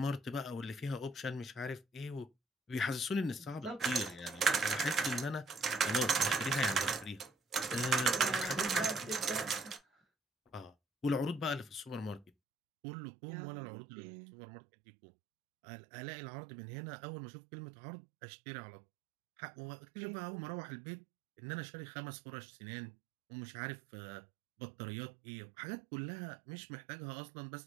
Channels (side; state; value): left; drops out; at 12.3 s